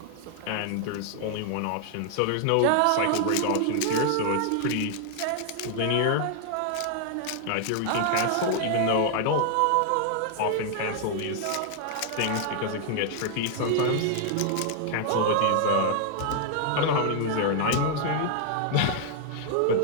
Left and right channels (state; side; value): different; both; correlation 0.00